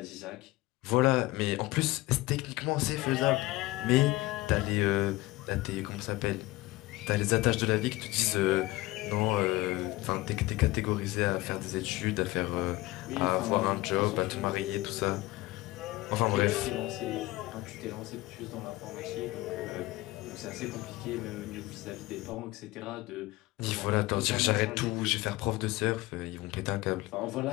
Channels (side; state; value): right; quieter; 19.6 dB